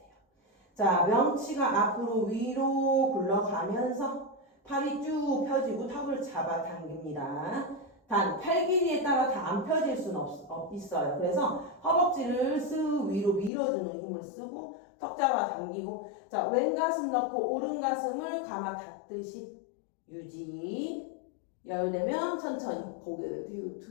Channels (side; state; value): right; drops out; at 13.5 s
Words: 자, 명치가 앞으로 위로 굴러가면서 팔이 쭉 펴지고 턱을 잡아당깁니다. 단, 팔 길이에 따라 다 안 펴질 수는 있어요. 그래서 허벅지를 쓱 위로 밀어주는 힘을 쓰고 턱 잡아당기고 자, 왼 가슴 넣고 오른 가슴을 감아 닫듯이 유지. 열되면 천천히 고개를 뒤로